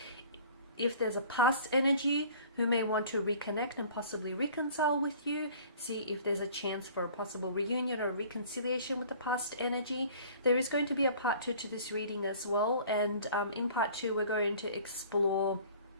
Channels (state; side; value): inverted; both; correlation -0.49